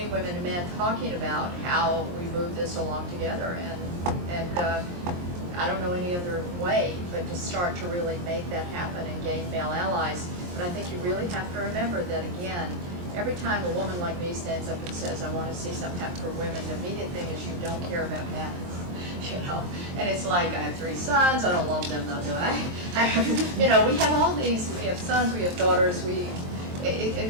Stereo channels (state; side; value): late; left; 23 ms